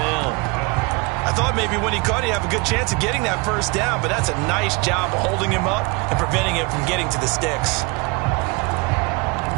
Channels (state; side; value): quieter; left; 27.2 dB